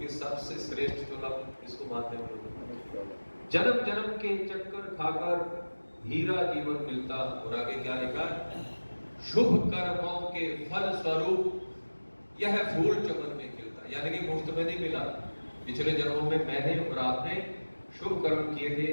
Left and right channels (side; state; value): both; inverted; correlation -1.00